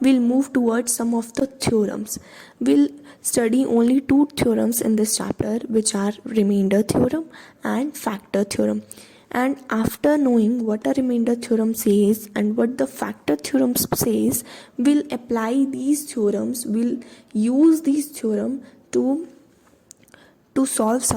we'll move towards some of the theorems. We'll study only two theorems in this chapter, which are remainder theorem and factor theorem. And after knowing what a remainder theorem says and what the factor theorem says, we'll apply these theorems, we'll use these theorems to solve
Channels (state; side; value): identical; both; correlation 1.00